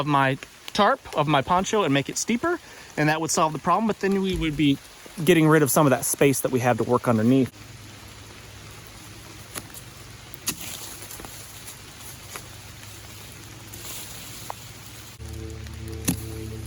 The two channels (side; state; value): both; identical; correlation 1.00